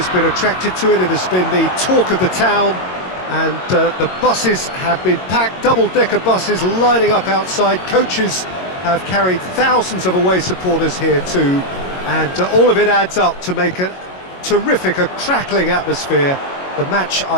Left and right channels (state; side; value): late; right; 22 ms